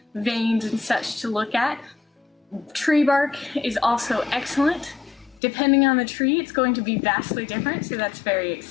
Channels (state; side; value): drops out; right; at 5.4 s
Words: veins and such to look at. Tree bark is also excellent. Depending on the tree, it's going to be vastly different, so that's very